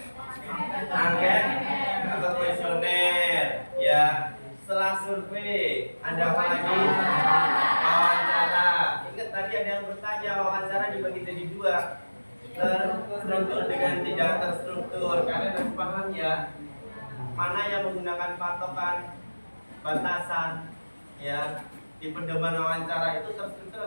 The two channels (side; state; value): both; inverted; correlation -1.00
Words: Angket atau kuesioner. Ya, setelah survei, ada apa lagi? Wawancara. Ingat tadi ada yang bertanya, wawancara dibagi jadi dua. Terstruktur dengan tidak terstruktur. Kalian harus paham ya, mana yang menggunakan patokan batasan ya di pedoman wawancara itu terstruktur